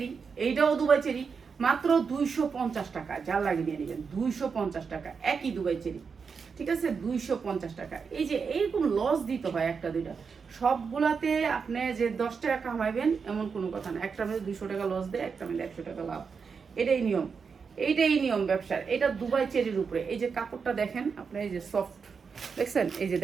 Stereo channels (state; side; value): quieter; left; 5.7 dB